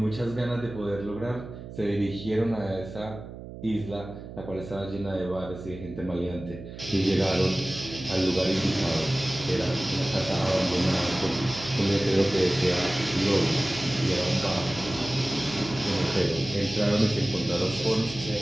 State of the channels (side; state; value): right; noise; hum, 13 dB below the sound